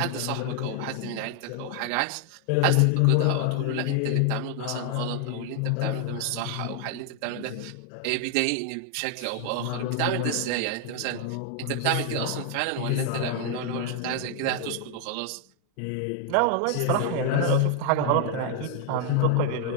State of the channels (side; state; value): both; different; correlation 0.00